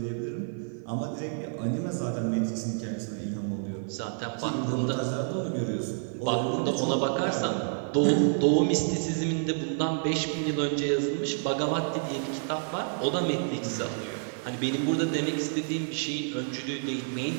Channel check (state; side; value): silent; left; 59 dB below the other